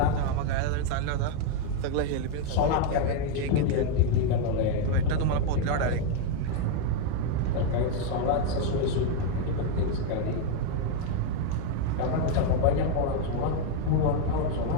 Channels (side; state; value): both; different; correlation 0.01